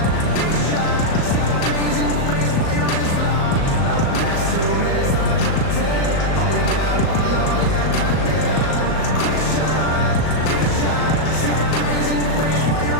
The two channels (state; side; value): late; right; 37 ms